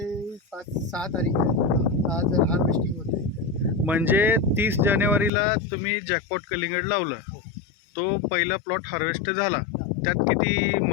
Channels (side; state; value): right; drops out; at 5.3 s